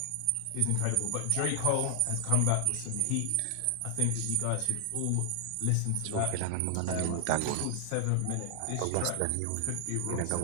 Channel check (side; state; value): both; different; correlation 0.00